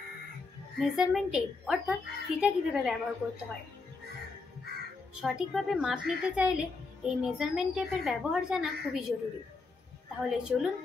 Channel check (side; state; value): right; quieter; 4.0 dB